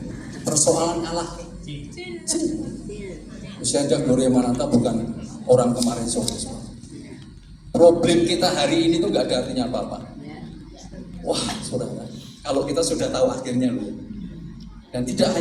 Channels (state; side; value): identical; both; correlation 1.00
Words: Persoalan Allah kecil. Usia Indah Gloria Mananta bukan orang kemarin sore. Problem kita hari ini tuh gak ada artinya apa-apa. Wah, saudara, kalau kita sudah tahu akhirnya loh. Dan tidak